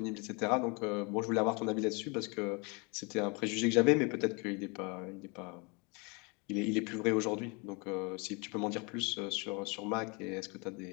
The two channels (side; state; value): right; quieter; 30.3 dB